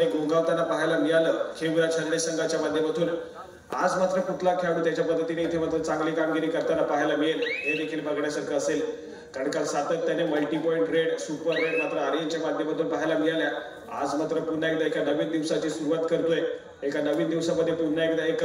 गोंगावताना पाहायला मिळालं खेमरा शर्डे संघाच्या माध्यमातून। आज मात्र कुठला खेळाडू त्याच्या पद्धतीने इथे मात्र चांगली कामगिरी करताना पाहायला मिळेल हे देखील बघण्यासारखं असेल। कारण काल सातत्याने multi point red super red मात्र आर्यनच्या माध्यमातून पाहायला मिळाल्या। आज मात्र पुन्हा एकदा एका नवीन दिवसाची सुरुवात करतोय। एका नवीन दिवसामध्ये पुन्हा एकदा एक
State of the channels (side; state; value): both; identical; correlation 1.00